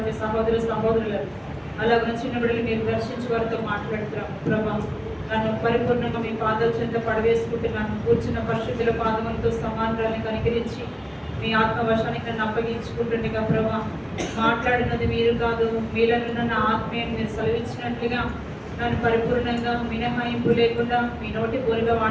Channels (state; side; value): identical; both; correlation 1.00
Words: సహోదరులను అలాగున చిన్న బిడ్డలు మీరు దర్శించి వారితో మాట్లాడుతున్నాం ప్రభా. నన్ను పరిపూర్ణంగా మీ పాదాల చెంత పడవేసుకుంటున్నాను. కూర్చున్న పరిశుద్ధుల పాదములతో సమానాన్ని కనికరించి మీ ఆత్మవశానికి నన్ను అప్పగించుకుంటుండగా ప్రభా, మాట్లాడినది మీరు కాదు, మీలను నన్ను ఆత్మీయం మీరు సెలవిచ్చినట్లుగా నన్ను పరిపూర్ణంగా మినహాయింపు లేకుండా మీ నోటి పూరుగా